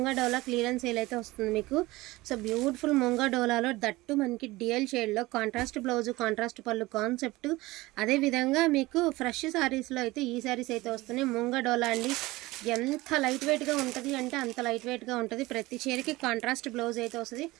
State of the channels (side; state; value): left; quieter; 19.9 dB